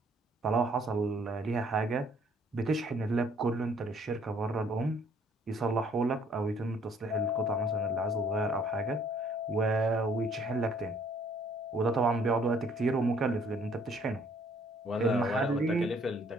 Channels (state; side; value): normal; both; correlation 0.62